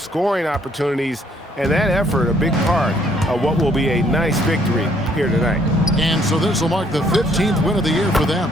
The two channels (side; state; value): both; normal; correlation 0.65